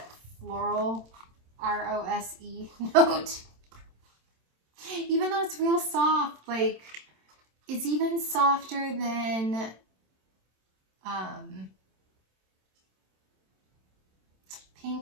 floral R-O-S-E note, even though it's real soft, like it's even softer than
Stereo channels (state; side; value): late; left; 27 ms